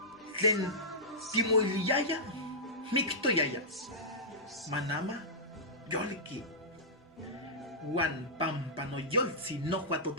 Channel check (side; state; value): both; normal; correlation -0.15